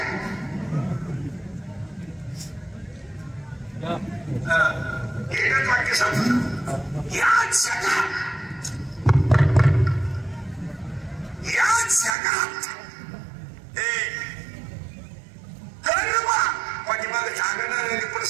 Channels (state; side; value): drops out; left; at 12.2 s